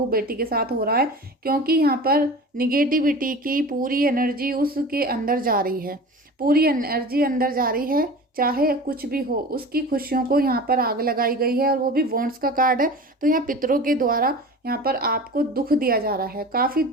बेटी के साथ हो रहा है, क्योंकि यहाँ पर निगेटिविटी की पूरी एनर्जी उसके अंदर जा रही है, पूरी एनर्जी अंदर जा रही है। चाहे कुछ भी हो, उसकी खुशियों को यहाँ पर आग लगाई गई है, और वो भी वॉन्ड्स का कार्ड है। तो यहाँ पितरों के द्वारा यहाँ पर आपको दुख दिया जा रहा है, काफ़ी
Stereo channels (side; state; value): both; normal; correlation 0.36